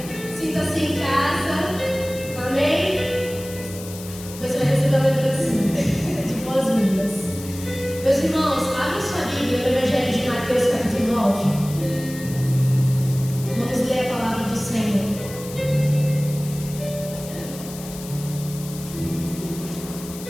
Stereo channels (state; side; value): noise; left; hiss, 14 dB below the sound